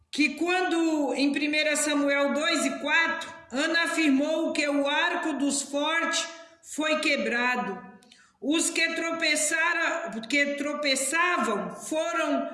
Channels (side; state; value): both; identical; correlation 1.00